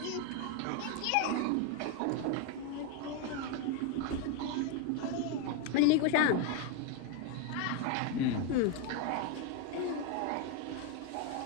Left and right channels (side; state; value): both; different; correlation 0.01